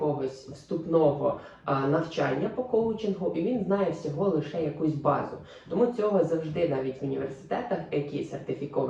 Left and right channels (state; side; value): identical; both; correlation 1.00